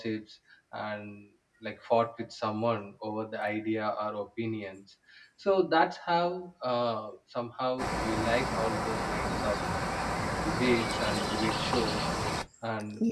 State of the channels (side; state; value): both; identical; correlation 1.00